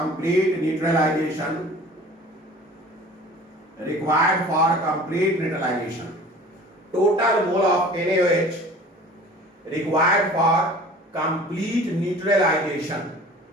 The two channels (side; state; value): both; normal; correlation 0.44